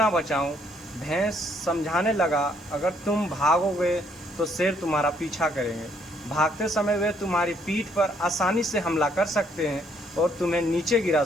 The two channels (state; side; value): normal; both; correlation 0.68